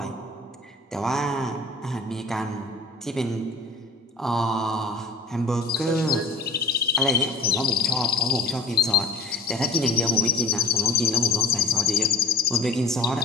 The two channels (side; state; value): right; quieter; 3.2 dB